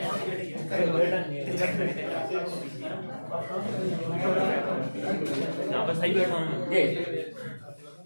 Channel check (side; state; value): both; inverted; correlation -1.00